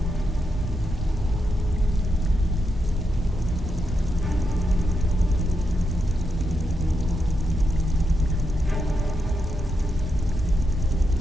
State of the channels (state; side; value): normal; both; correlation 0.84